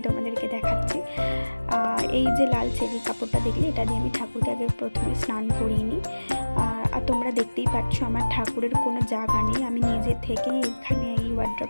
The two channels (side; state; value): both; inverted; correlation -1.00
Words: তোমাদেরকে দেখাচ্ছি। এই যে লাল চেরি কাপড়টা দেখলে, এটা দিয়ে আমি ঠাকুরকে আগে প্রথমে স্নান করিয়ে নিই। আর তোমরা দেখতেই পাচ্ছ আমার ঠাকুরের কোনো জায়গা নেই, আমি নিজে থেকেই এইখানে এই